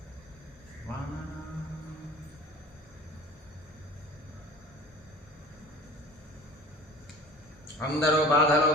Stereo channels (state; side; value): normal; both; correlation 0.41